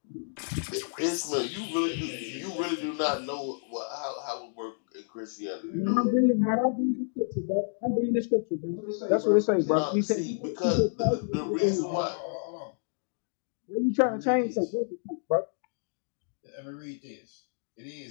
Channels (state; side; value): silent; right; digital silence